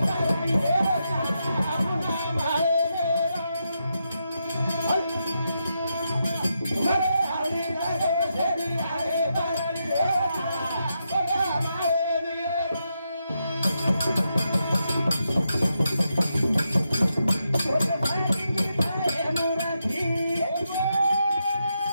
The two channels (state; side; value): inverted; both; correlation -0.84